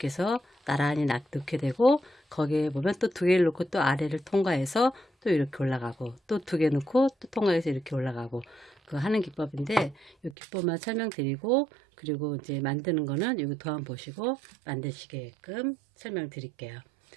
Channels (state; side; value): drops out; left; at 10.4 s